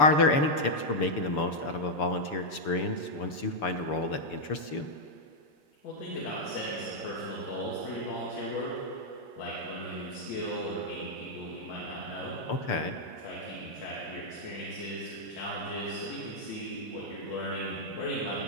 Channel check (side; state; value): right; late; 6.8 ms